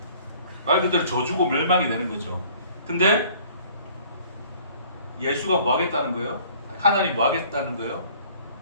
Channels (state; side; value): inverted; both; correlation -0.54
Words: 말 그대로 저주고 멸망이 되는 거죠. 근데 예수가 뭐 하겠다는 거예요? 하나님 뭐 하겠다는 거예요?